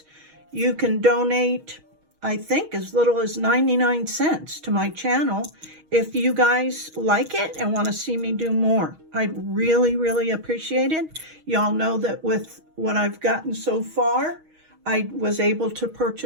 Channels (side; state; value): left; late; 6.3 ms